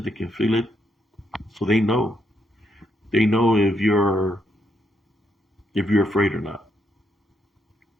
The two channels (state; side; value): normal; both; correlation 0.77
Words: They can feel it. So they know. They know if you're afraid or not.